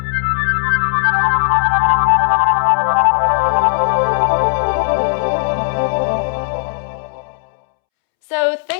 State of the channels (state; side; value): silent; right; 69 dB below the other